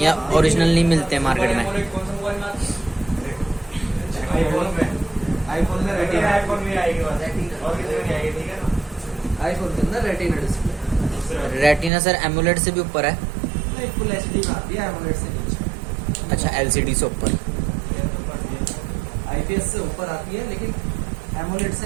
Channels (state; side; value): drops out; left; at 11.9 s